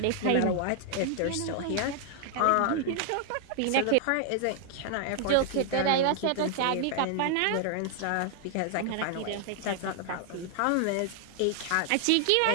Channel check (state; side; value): different; both; correlation 0.00